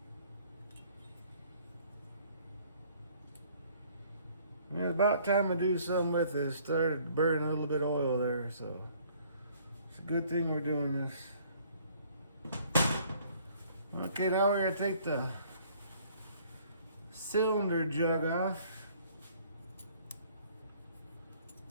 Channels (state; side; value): inverted; both; correlation -0.59